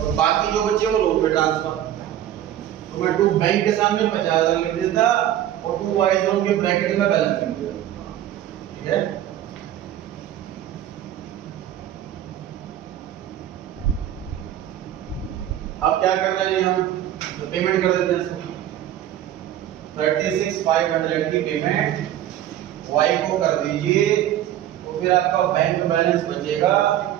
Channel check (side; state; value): left; quieter; 11.9 dB